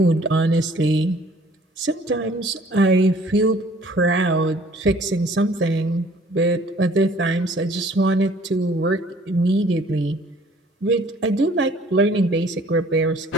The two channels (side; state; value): both; normal; correlation 0.55